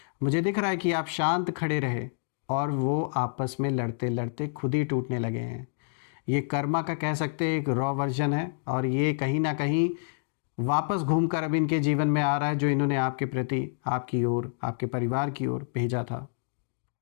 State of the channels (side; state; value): right; silent; digital silence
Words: मुझे दिख रहा है कि आप शांत खड़े रहे और वो आपस में लड़ते लड़ते खुद ही टूटने लगे हैं। ये कर्मा का कह सकते हैं एक रॉ वर्जन है और ये कहीं ना कहीं वापस घूमकर अब इनके जीवन में आ रहा है जो इन्होंने आपके प्रति, आपकी ओर, आपके परिवार की ओर भेजा था।